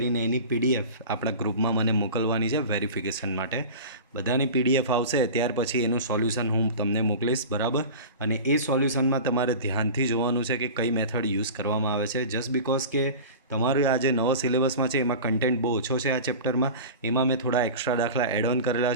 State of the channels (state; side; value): inverted; both; correlation -0.33